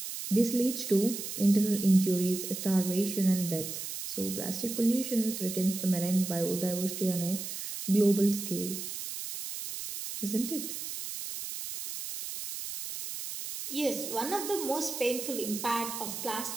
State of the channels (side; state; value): right; noise; hiss, 7 dB below the sound